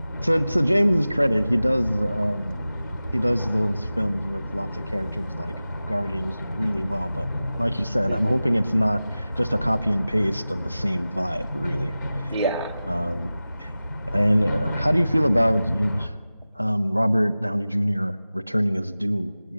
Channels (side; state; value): both; inverted; correlation -0.96